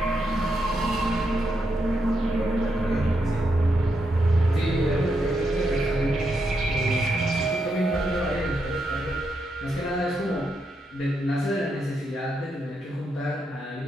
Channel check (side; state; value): both; normal; correlation 0.82